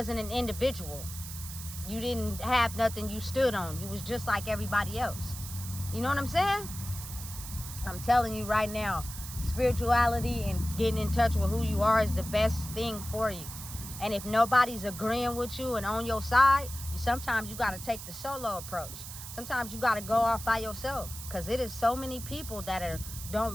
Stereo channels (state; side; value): noise; right; hiss, 11 dB below the sound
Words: an individual. You didn't have nothing you stood on. You was just like everybody else. You know what I'm saying? I'm telling you right now, spirituality and getting in touch with who you are is the best thing for you. And if nobody's agreeing with you and on your side, sometimes you got to take the solo approach. Sometimes you got to go off by yourself, because it is so many people that don't